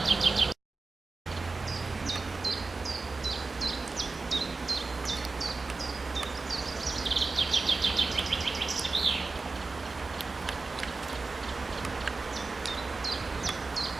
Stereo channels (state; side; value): quieter; left; 3.8 dB